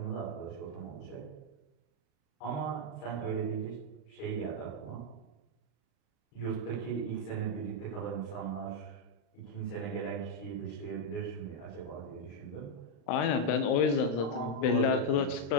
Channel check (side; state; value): right; late; 35 ms